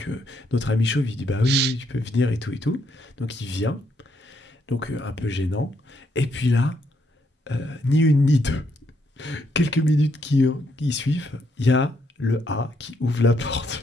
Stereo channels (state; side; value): normal; both; correlation 0.74